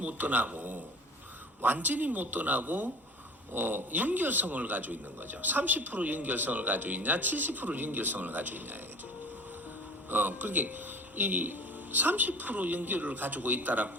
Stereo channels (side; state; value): both; normal; correlation 0.41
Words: 떠나고 연결성을 가지고 있는 거죠. 30% 연결성을 가지고 있냐, 70% 연결성을 가지고 있냐 이거죠. 그게 이 30% 연결을 가지고